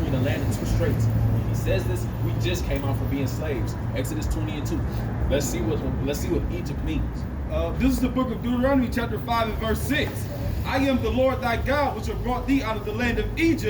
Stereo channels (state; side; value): identical; both; correlation 1.00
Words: the land and 2 straits. When he says this, we just came out from being slaves. Exodus 20 and 2. Let's see what Egypt means. This is the book of Deuteronomy chapter 5 and verse 6. I am the Lord thy God, which have brought thee out of the land of